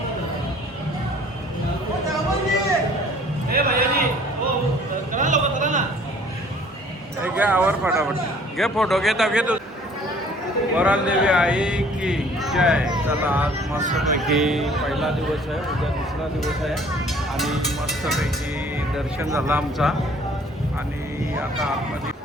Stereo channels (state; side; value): normal; both; correlation 0.55